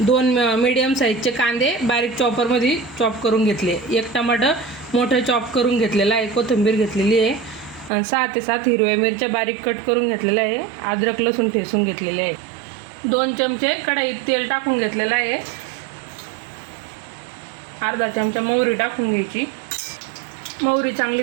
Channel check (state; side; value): drops out; left; at 7.9 s